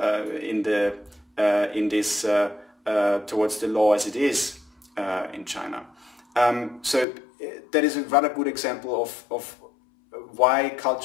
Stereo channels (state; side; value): drops out; right; at 7.1 s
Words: in this towards the law as it is in China. So that is a rather good example of why